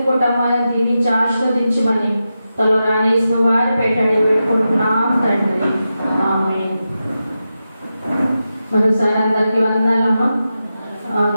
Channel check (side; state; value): both; inverted; correlation -0.90